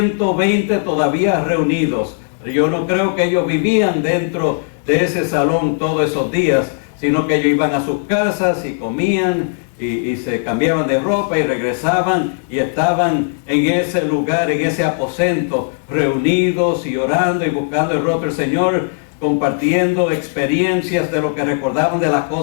todavía reunidos. Yo no creo que ellos vivían dentro de ese salón todos esos días, sino que ellos iban a sus casas y comían y se cambiaban de ropa y regresaban y estaban en ese lugar, en ese aposento, reunidos y orando y buscando el rostro del Señor, compartiendo experiencias de lo que recordaban de las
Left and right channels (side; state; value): right; silent; digital silence